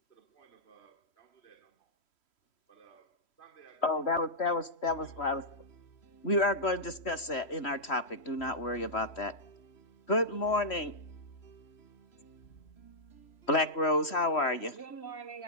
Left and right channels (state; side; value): late; right; 3.1 ms